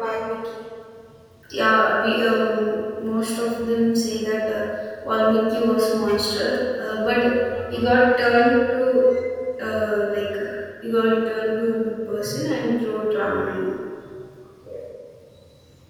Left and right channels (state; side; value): identical; both; correlation 1.00